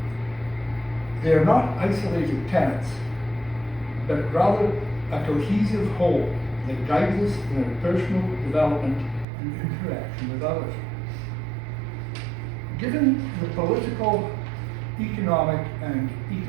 They are not isolated tenets, but rather a cohesive whole that guides us in our personal development and interaction with others. Given the political, economic, and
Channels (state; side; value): drops out; left; at 9.2 s